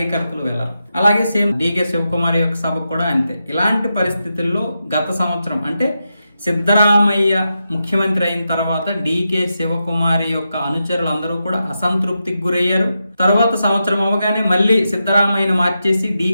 వెళ్ళరు. అలాగే సేమ్ డీకే శివకుమార్ యొక్క సభ కూడా అంతే. ఇలాంటి పరిస్థితుల్లో గత సంవత్సరం అంటే సిద్ధరామయ్య ముఖ్యమంత్రి అయిన తర్వాత డీకే శివకుమారి యొక్క అనుచరులు అందరూ కూడా అసంతృప్తికి గురయ్యారు. తర్వాత సంవత్సరం అవగానే మళ్ళీ సిద్ధరామయ్యను మార్చేసి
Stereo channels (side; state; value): both; inverted; correlation -0.88